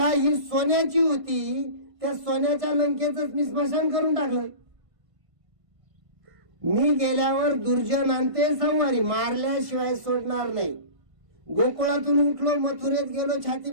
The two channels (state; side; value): late; left; 1.5 ms